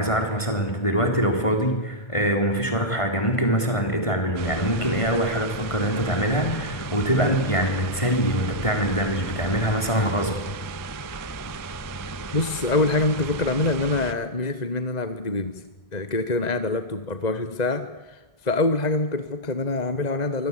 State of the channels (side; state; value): right; late; 1.5 ms